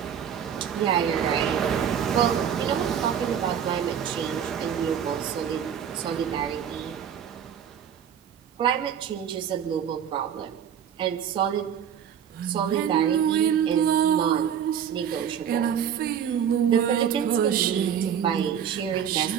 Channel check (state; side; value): quieter; left; 8.6 dB